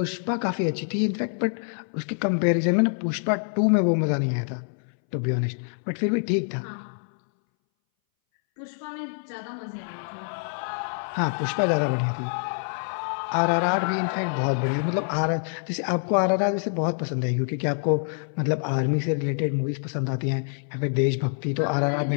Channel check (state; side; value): silent; right; 61 dB below the other